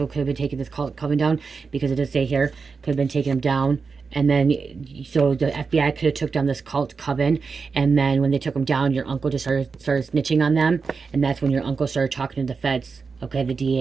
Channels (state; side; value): quieter; left; 5.0 dB